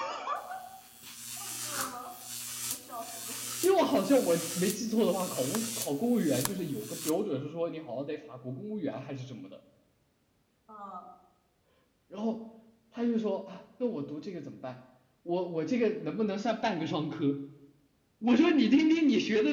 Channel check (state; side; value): identical; both; correlation 1.00